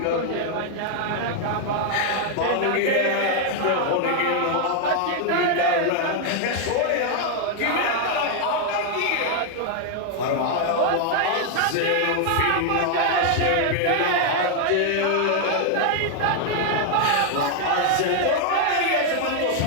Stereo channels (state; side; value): different; both; correlation 0.00